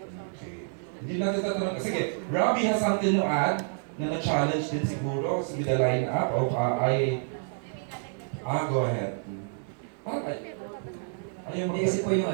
Okay. Hindi natin tatanong. Sige, Robbie has something to add na na-challenge din siguro with the line-up of go ahead. Hindi kasi po yung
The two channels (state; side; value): silent; left; digital silence